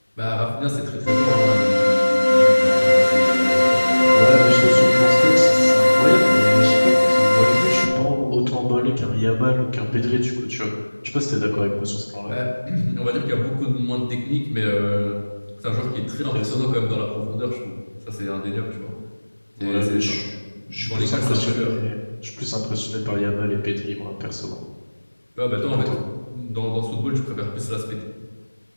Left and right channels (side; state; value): both; inverted; correlation -1.00